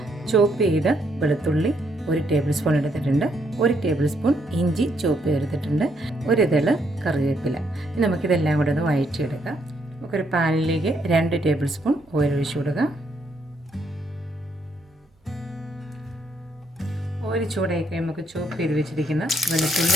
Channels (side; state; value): both; normal; correlation 0.73